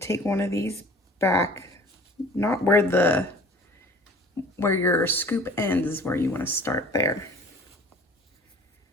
one of these back, not where your scoop ends is where you want to start there.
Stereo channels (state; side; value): normal; both; correlation 0.46